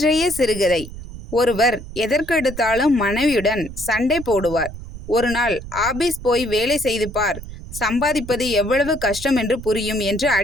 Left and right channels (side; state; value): right; noise; rumble, 12 dB below the sound